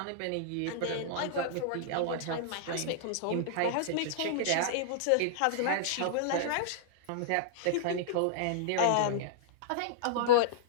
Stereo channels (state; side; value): different; both; correlation -0.02